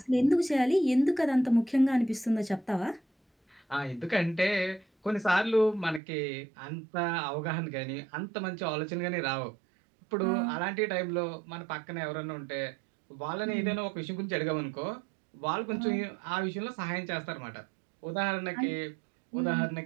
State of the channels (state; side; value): drops out; left; at 6.0 s